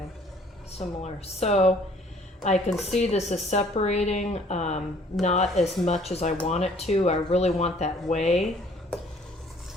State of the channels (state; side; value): normal; both; correlation 0.58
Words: similar. So I can see this is separating, not as much as I want it to. I really want that whey